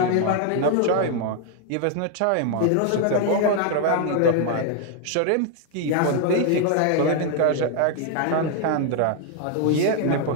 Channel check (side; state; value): both; different; correlation 0.00